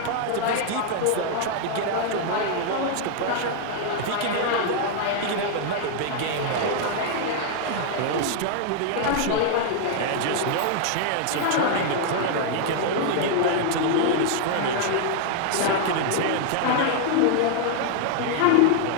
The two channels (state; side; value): different; both; correlation 0.00